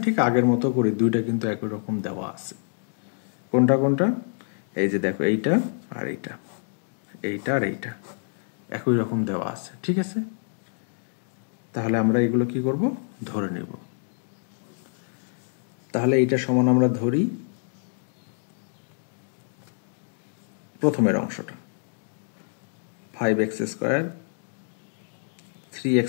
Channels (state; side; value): silent; right; digital silence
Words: ঠিক আগের মতো করে দুইটা কিন্তু একই রকম দেওয়া আছে। কোনটা কোনটা? এই যে দেখো এইটা আর এইটা, এইটা আর এইটা একই রকম দেওয়া আছে, ঠিক আছে? তাহলে আমরা এগুলো কি করব? ধরে নেব। তাহলে এইটা সমান আমরা ধরি প্রথমের অংশটা 5x স্কোয়ার 3x